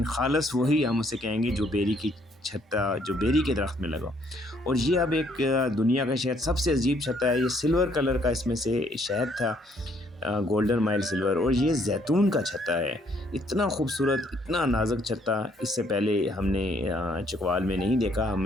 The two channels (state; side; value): normal; both; correlation 0.66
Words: ख़ालस वही हम उसे कहेंगे जो बेरी की छत्ता, जो बेरी के दरख्त में लगा। और ये अब एक दुनिया का शहद सबसे अजीब छत्ता है। ये सिल्वर कलर का इसमें से शहद था, गोल्डन माइल सिल्वर, और ये जैतून का छत्ता है। इतना खूबसूरत, इतना नाजुक छत्ता इससे पहले हमने चकवाल में नहीं देखा।